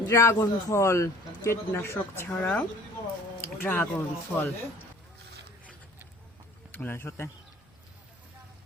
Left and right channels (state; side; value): normal; both; correlation 0.50